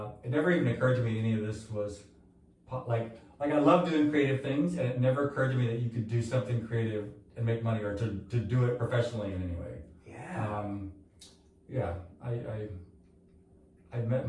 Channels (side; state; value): both; identical; correlation 1.00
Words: it never even occurred to me any of this was, like I love doing creative things, and it never occurred to me that you could do something creative and make money or to do it professionally in any way. Yeah. I met